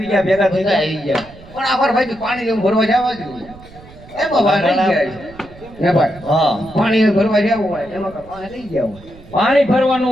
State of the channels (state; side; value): noise; right; rumble, 21 dB below the sound